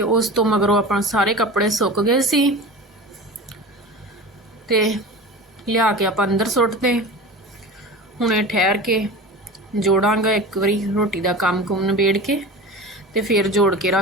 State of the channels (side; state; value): both; normal; correlation 0.34